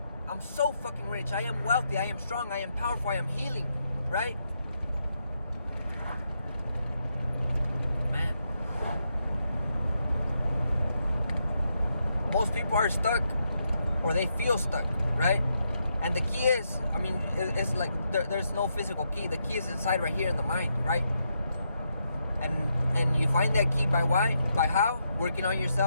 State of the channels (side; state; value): both; inverted; correlation -0.80